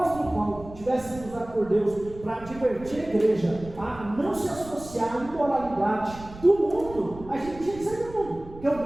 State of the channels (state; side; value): noise; right; rumble, 17 dB below the sound